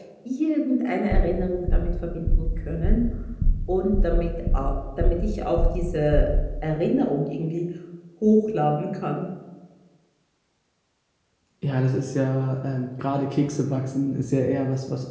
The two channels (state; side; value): identical; both; correlation 1.00